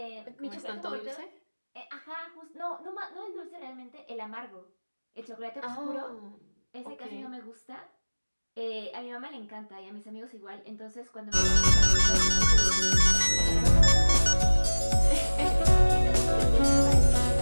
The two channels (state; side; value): inverted; both; correlation -1.00